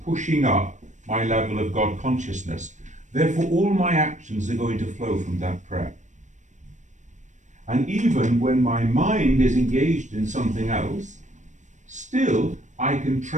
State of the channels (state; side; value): late; left; 0.35 ms